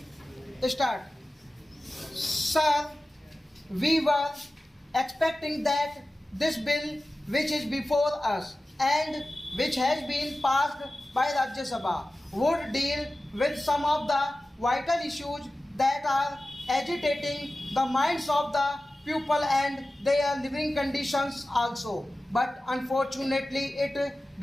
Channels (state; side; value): normal; both; correlation 0.95